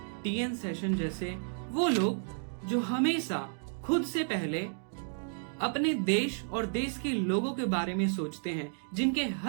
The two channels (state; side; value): silent; left; digital silence